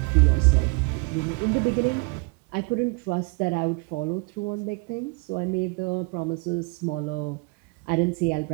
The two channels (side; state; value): left; quieter; 31.9 dB